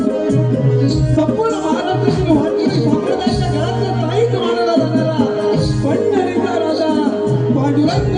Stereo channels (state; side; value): identical; both; correlation 1.00